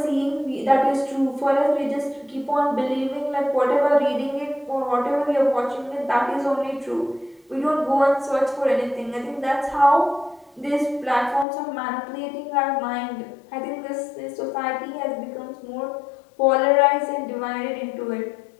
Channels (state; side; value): drops out; right; at 11.5 s